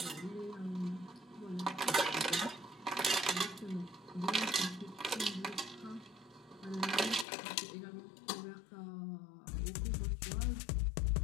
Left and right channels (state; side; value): drops out; right; at 7.2 s